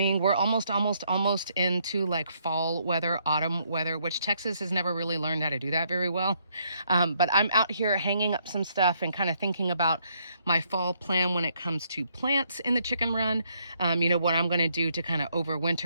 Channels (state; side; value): inverted; both; correlation -0.72